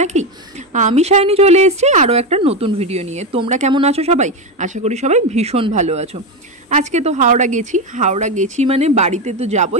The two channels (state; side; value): normal; both; correlation 0.13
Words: নাকি? আমি সায়নী চলে এসেছি আরও একটা নতুন ভিডিও নিয়ে। তোমরা কেমন আছো সবাই? আশা করি সবাই ভীষণ ভালো আছো। আজকে তো হাওড়া গেছি মানে বাড়িতে তো